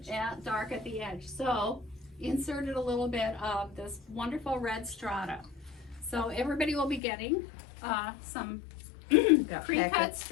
Yeah, dark at the edge. So inserted a little bit of this wonderful red strata. So everybody will be getting, some Got pre-cut packets.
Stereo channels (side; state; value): right; drops out; at 7.0 s